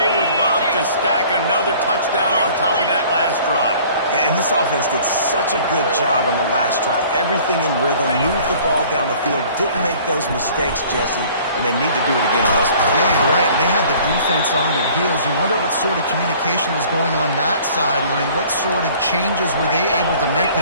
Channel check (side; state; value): both; inverted; correlation -0.51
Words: would love to stack another touchdown on top of that last drive. And this offense did such a good job on the last drive. Everything in rhythm, moved the ball down the field, didn't make those mistakes, Jesse, and they need to do it again on this one. Yeah, you're right. They had the defense on their heels. You wonder what sort of communication was going on that sideline. What sort of changes were they able to make,